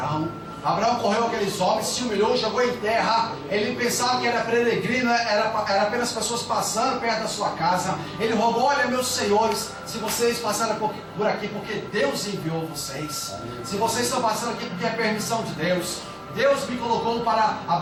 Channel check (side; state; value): both; identical; correlation 1.00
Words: Abraão correu aqueles homens, se humilhou, jogou em terra. Ele pensava que era peregrino, era apenas pessoas passando perto da sua casa. Ele rogou: olha, meus senhores, se vocês passaram por aqui porque Deus enviou vocês, se vocês estão passando aqui porque é permissão de Deus, Deus me colocou para